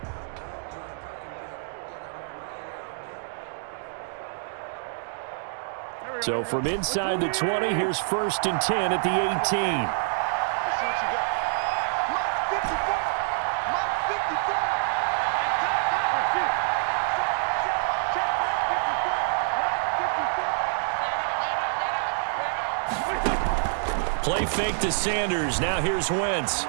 So from inside the 20, here's 1st and 10 at the 18. Play fake to Sanders. Now here's Wentz.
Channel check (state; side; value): silent; left; digital silence